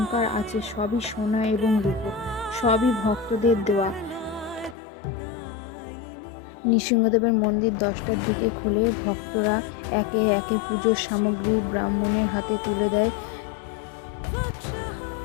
আছে সবই সোনা এবং রূপো, সবই ভক্তদের দেওয়া। নৃসিংহদেবের মন্দির ১০টার দিকে খুলে ভক্তরা একে একে পুজোর সামগ্রী ব্রাহ্মণের হাতে তুলে দেয়।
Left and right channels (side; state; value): right; drops out; at 4.8 s